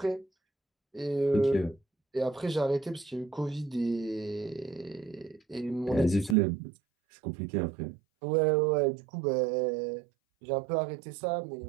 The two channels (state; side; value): drops out; left; at 6.4 s